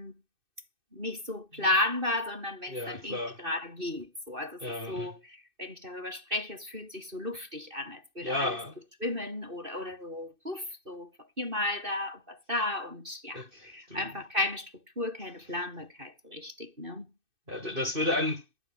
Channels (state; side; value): late; left; 2.6 ms